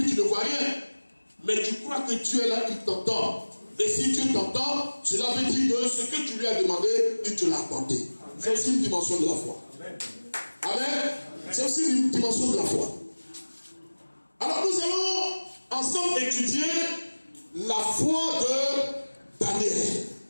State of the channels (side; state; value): both; inverted; correlation -1.00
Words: tu ne vois rien. Mais tu crois que Dieu est là, il t'entend. Et si Dieu t'entend, cela veut dire que ce que tu lui as demandé, il te l'a apporté. C'est aussi une dimension de la foi. Amen. C'est aussi une dimension de la foi. Alors nous allons ensemble étudier la foi de Daniel.